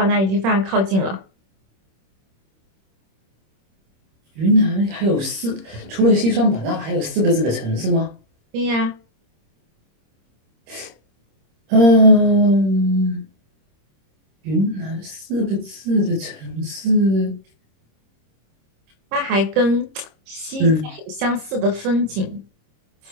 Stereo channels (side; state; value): left; late; 26 ms